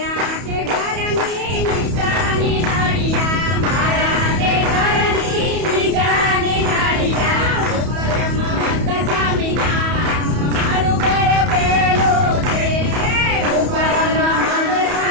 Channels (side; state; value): left; late; 31 ms